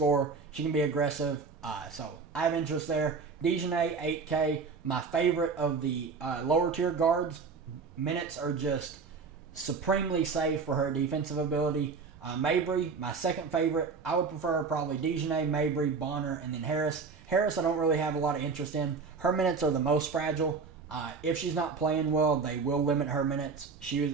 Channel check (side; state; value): left; quieter; 5.0 dB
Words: She can be aggressive. So I have interest there. Dejanay, 8K. My favorite of the lower tier guards. Minutes are just supremely safe for her defensive ability. Mabry, my second favorite. I would prefer probably Dejanay, Mabry, Bonner, and then Harris. Harris I don't really have a lot of interest in. Her minutes are the most fragile. If she's not playing well, they will limit her minutes.